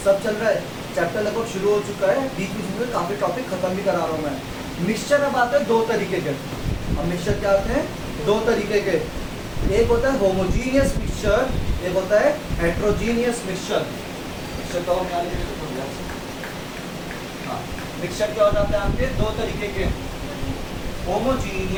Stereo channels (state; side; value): identical; both; correlation 1.00